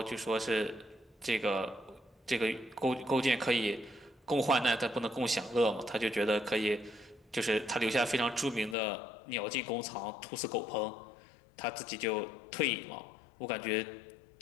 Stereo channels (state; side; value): drops out; right; at 8.8 s